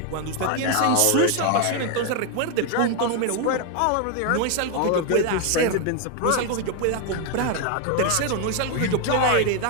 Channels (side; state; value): both; different; correlation 0.01